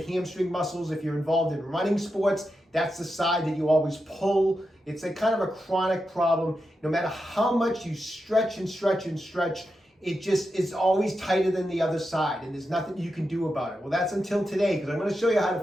hamstring muscles, if you're involved in running sports, that's the side that you always pull. It's a kind of a chronic problem. No matter how much you stretch and stretch and stretch, it just is always tighter than the other side, and there's nothing you can do about it. Well, that's until today, because I'm going to show you how to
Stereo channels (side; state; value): both; normal; correlation 0.88